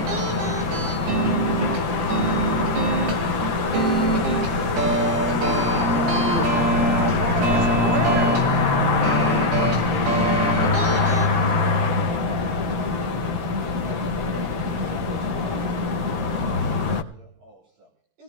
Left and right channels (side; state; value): left; late; 17 ms